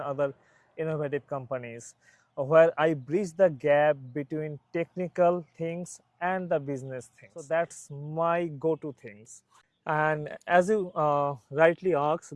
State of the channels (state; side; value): identical; both; correlation 1.00